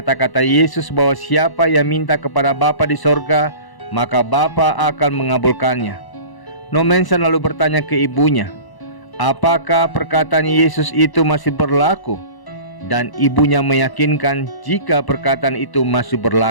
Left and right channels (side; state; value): right; late; 1.0 ms